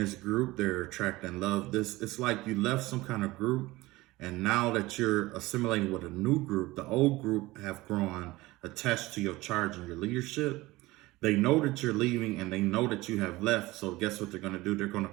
group, they're attracting love. It's like you left some kind of group, and now that you're assimilating with a new group, the old group have grown attached to your charge and your leadership. They know that you're leaving and they know that you have left. So guess what they're going to do? They're going to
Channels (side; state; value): left; quieter; 19.6 dB